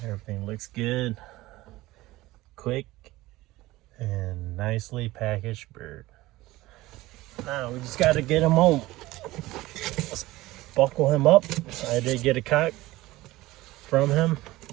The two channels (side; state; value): left; quieter; 18.4 dB